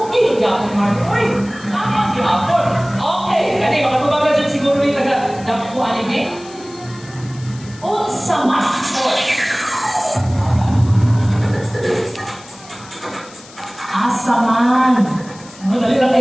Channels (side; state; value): left; noise; hiss, 21 dB below the sound